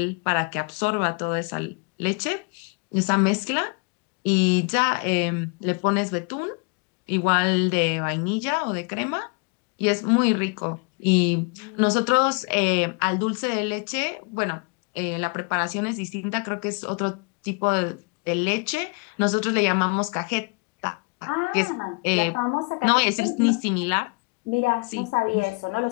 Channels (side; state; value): right; quieter; 32.5 dB